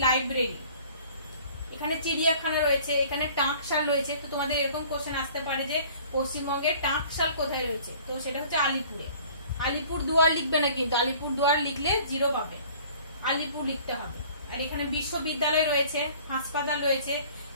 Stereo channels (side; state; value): both; inverted; correlation -0.51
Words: লাইব্রেরি। এখানে চিড়িয়াখানা রয়েছে, এখানে টাঁকশাল রয়েছে। তো তোমাদের এরকম কোশ্চেন আসতে পারে যে পশ্চিমবঙ্গের টাঁকশাল কোথায় রয়েছে, তো সেটা হচ্ছে আলিপুরে। আলিপুর দুয়ার লিখবে না কিন্তু, আলিপুর দুয়ার লিখলে 0 পাবে, আলিপুর লিখতে হবে। আর এখানে বিশ্ববিদ্যালয় রয়েছে, হাসপাতাল রয়েছে,